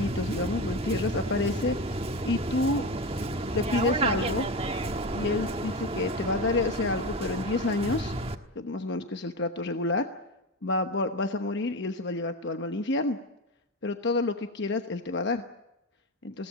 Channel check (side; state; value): both; normal; correlation 0.21